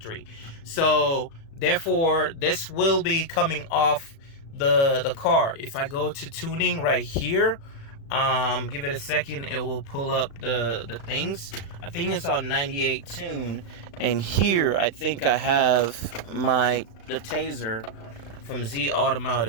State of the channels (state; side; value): late; right; 36 ms